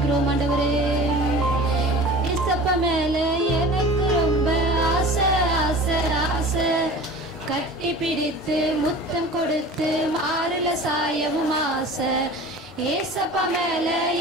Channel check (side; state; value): both; normal; correlation 0.40